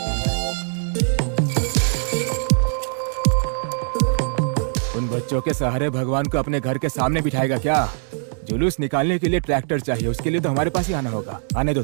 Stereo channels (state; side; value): silent; left; 64 dB below the other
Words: उन बच्चों के सहारे भगवान को अपने घर के सामने बिठाएगा क्या? जुलूस निकालने के लिए ट्रैक्टर चाहिए, उसके लिए तो हमारे पास ही आना होगा। आने दो